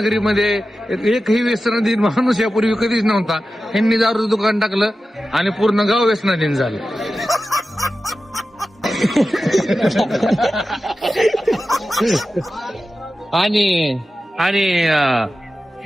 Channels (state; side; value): normal; both; correlation 0.93